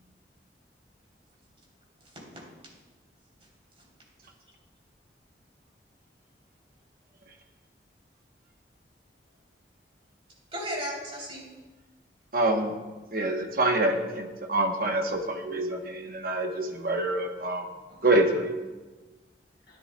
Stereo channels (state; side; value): normal; both; correlation 0.10